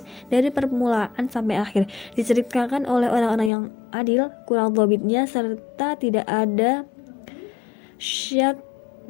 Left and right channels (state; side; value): drops out; right; at 3.5 s